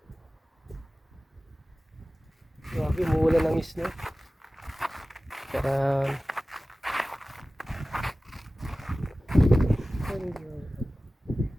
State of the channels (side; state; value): both; normal; correlation 0.97